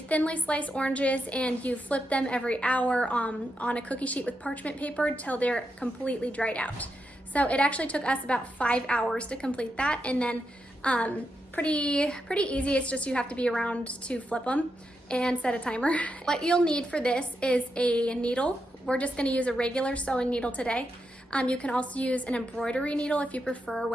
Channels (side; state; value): both; normal; correlation 0.85